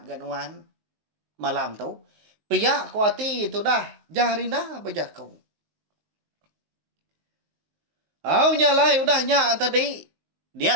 ke nuan. Malam tu. Piyak ku hati tu dah. Jarinda berjaku. Au nyalai udah nyak tadi.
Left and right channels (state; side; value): late; left; 19 ms